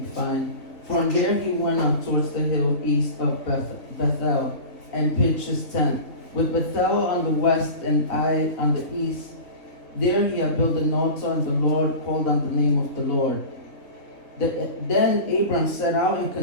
find, from there he went up towards the hill east of Bethel and pitched his tent, with Bethel on the west and Ai on the east. There he had built an altar, and the Lord called on the name of the Lord. Then Abram set out and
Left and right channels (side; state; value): right; late; 3.6 ms